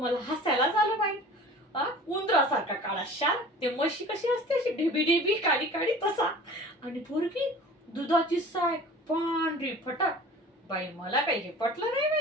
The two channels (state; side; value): normal; both; correlation 0.43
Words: हसायलाच आलं बाई. उंदरासारखा काळा शाल, ते म्हशी कशी असते अशी ढेबी ढेबी काळी काळी तसा, आणि पोरगी दुधाची साय पांढरी फटाक. बाई मला काही हे पटलं नाही